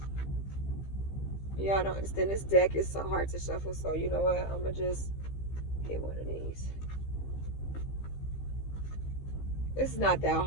Yeah, I don't understand. This deck is so hard to shuffle, so you know what? I'm gonna just hit one of these. It's not that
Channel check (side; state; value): right; late; 15 ms